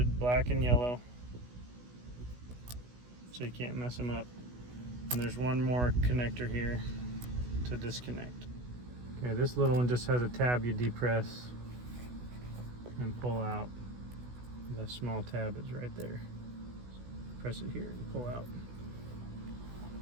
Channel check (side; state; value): left; late; 16 ms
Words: black and yellow, so you can't mess them up. And there's one more connector here to disconnect. Okay, this little one just has a tab you depress and pull out. The small tab is right there. Press it here and pull out.